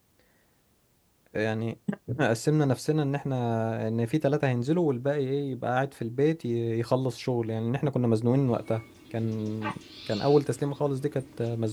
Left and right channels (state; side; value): identical; both; correlation 1.00